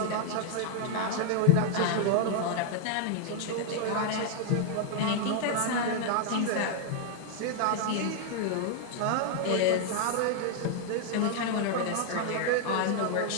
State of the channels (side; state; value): both; different; correlation 0.00